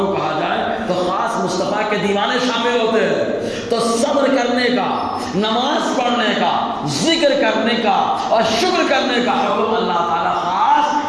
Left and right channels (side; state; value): both; identical; correlation 1.00